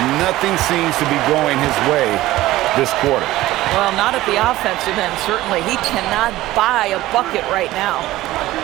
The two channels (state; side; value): quieter; left; 16.5 dB